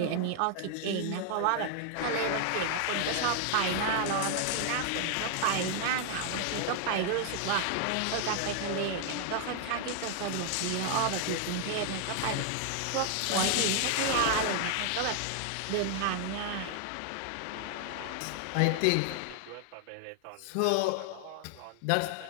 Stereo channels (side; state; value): both; different; correlation 0.00